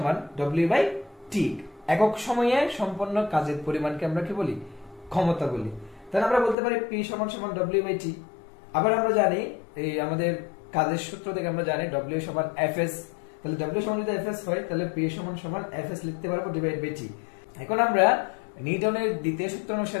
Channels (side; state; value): right; drops out; at 6.6 s